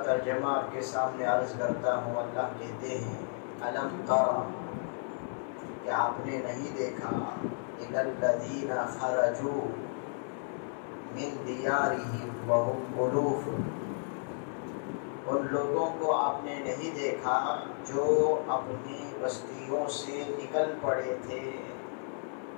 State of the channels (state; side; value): silent; right; 56 dB below the other